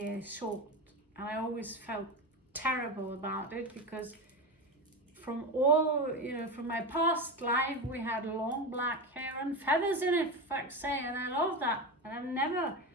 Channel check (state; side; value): normal; both; correlation 0.20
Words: short. And I always felt terrible about it, because from all, you know, from my past life, we had long black hair and feathers in it, for fuck's sake, and I love that. And